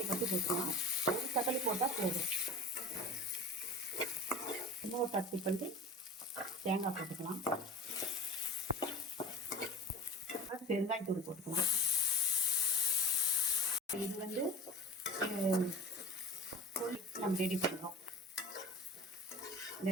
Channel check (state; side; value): normal; both; correlation 0.36